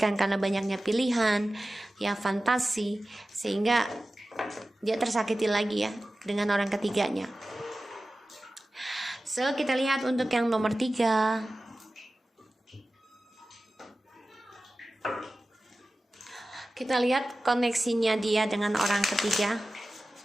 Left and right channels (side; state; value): both; normal; correlation 0.95